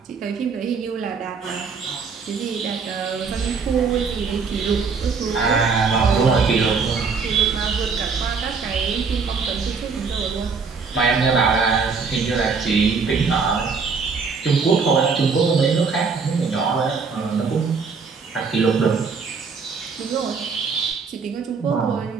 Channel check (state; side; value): quieter; left; 5.1 dB